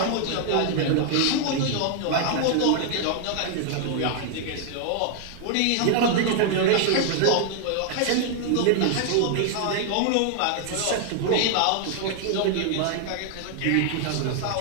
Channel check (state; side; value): different; both; correlation 0.00